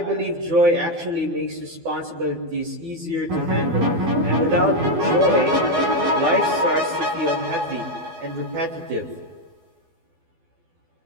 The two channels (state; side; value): late; left; 12 ms